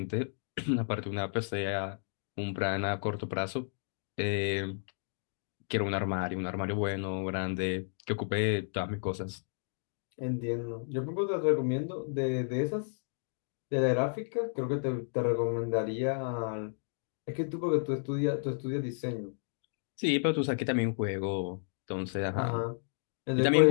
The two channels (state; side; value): silent; right; digital silence